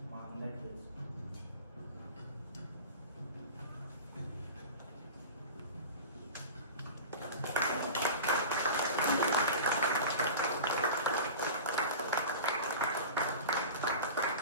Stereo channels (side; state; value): both; inverted; correlation -0.32